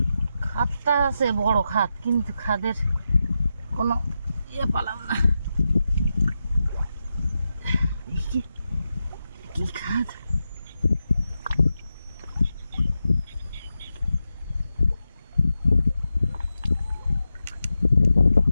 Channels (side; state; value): both; inverted; correlation -0.89